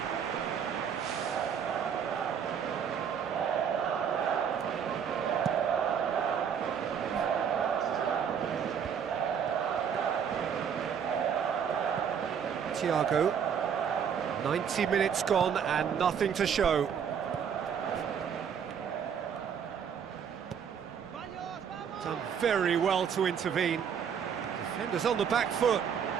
Thiago. 90 minutes gone and nothing to show. Done very well to intervene. Defenders on the back foot.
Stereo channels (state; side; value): quieter; left; 7.6 dB